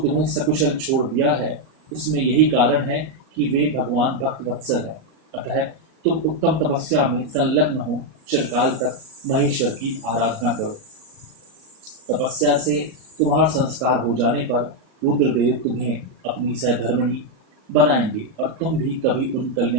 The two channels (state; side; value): late; left; 37 ms